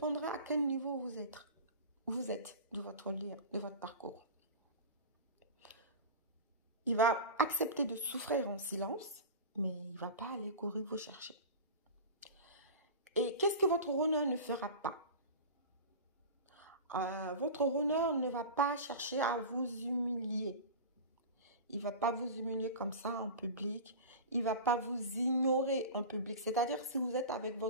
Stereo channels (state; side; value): inverted; both; correlation -0.30